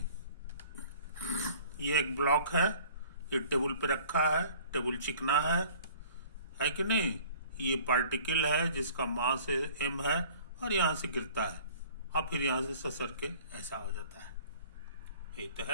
ये एक ब्लॉक है, ये टेबल पे रखा है, टेबल चिकना है कि नहीं? ये पार्टिकल है जिसका मास m है और यहाँ से गिरता है और फिर यहाँ से ससर के ऐसा हो जाता है। ये तो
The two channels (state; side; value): inverted; both; correlation -0.50